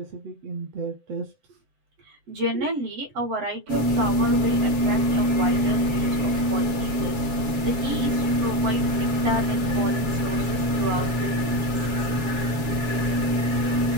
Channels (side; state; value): left; late; 7.3 ms